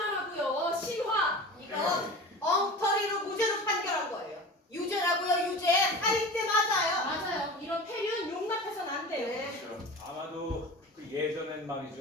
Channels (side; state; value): both; normal; correlation 0.34